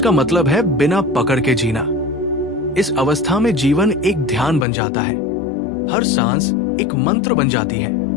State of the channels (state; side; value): drops out; right; at 4.7 s